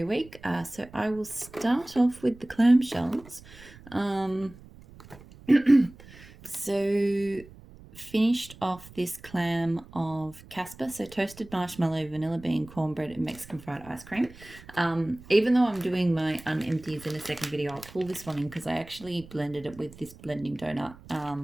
week. So I will start off with the clamshells. So finished off this clam of Casper, so toasted marshmallow, vanilla bean, cornbread, and Mexican fried ice cream. Even though I'm doing my unempties in a second video, I'll pull this one in because I actually blended it with this blending donut,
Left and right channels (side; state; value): right; noise; rumble, 20 dB below the sound